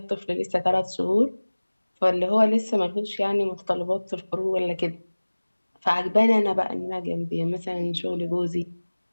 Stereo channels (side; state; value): both; inverted; correlation -1.00